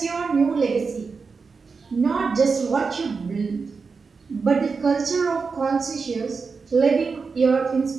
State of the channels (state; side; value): quieter; left; 4.9 dB